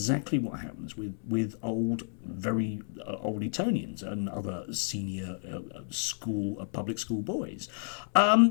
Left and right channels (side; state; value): right; silent; 57 dB below the other